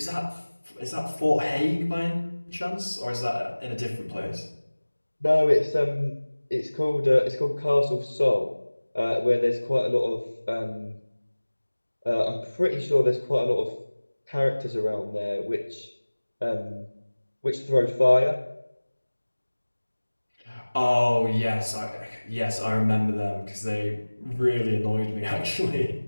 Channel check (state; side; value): inverted; both; correlation -1.00